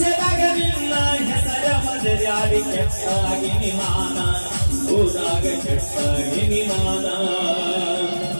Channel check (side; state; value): both; inverted; correlation -1.00